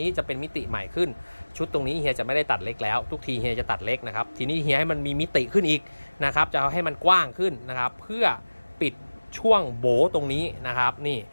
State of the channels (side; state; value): both; inverted; correlation -1.00